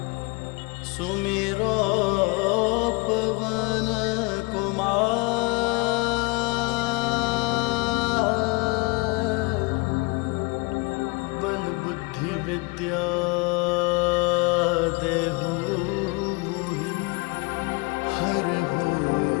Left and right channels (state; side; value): quieter; right; 28.0 dB